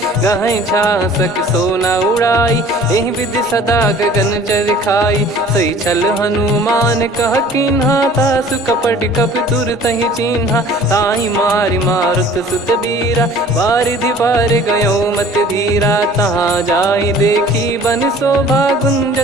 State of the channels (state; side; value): normal; both; correlation 0.49